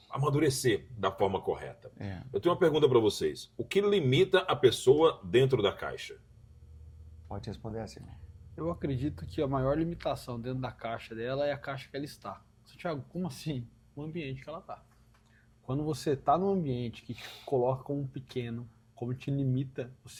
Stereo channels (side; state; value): both; identical; correlation 1.00